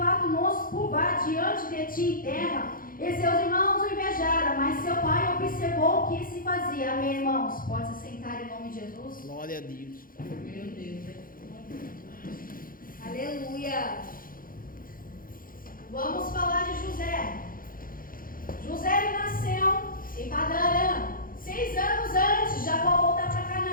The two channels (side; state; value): right; late; 0.41 ms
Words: nos curvar diante de ti em terra? E seus irmãos o invejaram, mas seu pai observou o que se fazia. Amém, irmãos? Pode se sentar em nome de Jesus. Glória a Deus. Meu Deus. Aleluia. Vamos falar de José. José ele nasceu em Padan-Aram. 6 anos antes de Jacó voltar para